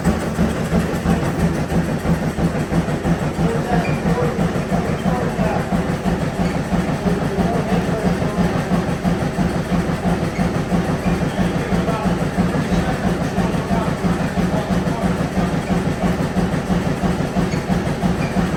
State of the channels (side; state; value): both; identical; correlation 1.00